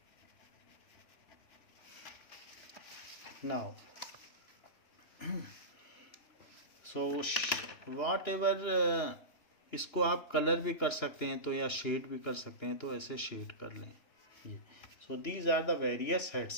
Now so whatever इसको आप कलर भी कर सकते हैं तो, या शेड भी कर सकते हैं तो, ऐसे शेड कर लें ये। So these are the various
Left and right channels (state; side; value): late; right; 2.9 ms